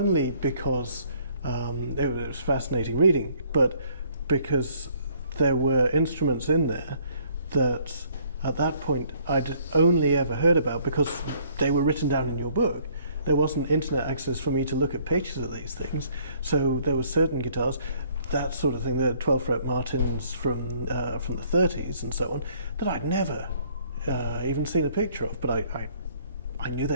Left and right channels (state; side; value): inverted; both; correlation -0.61